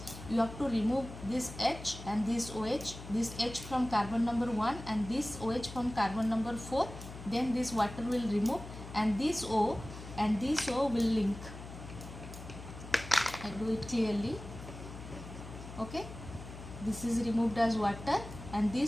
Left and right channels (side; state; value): left; noise; hum, 12 dB below the sound